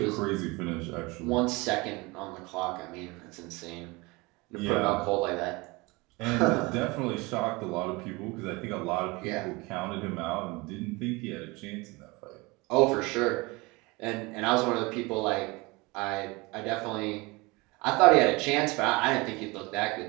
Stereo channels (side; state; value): left; quieter; 24.7 dB